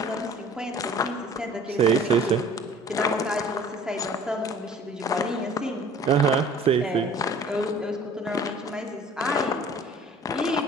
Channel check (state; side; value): normal; both; correlation 0.49